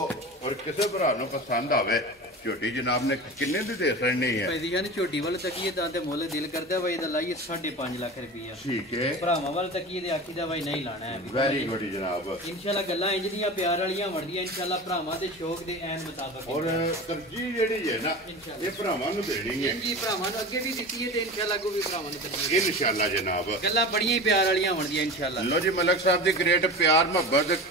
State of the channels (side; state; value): both; normal; correlation 0.32